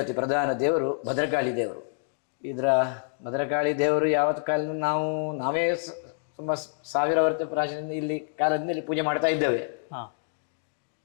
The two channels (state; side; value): silent; right; digital silence